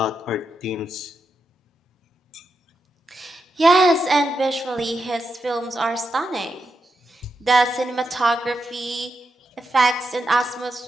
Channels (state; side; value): normal; both; correlation 0.86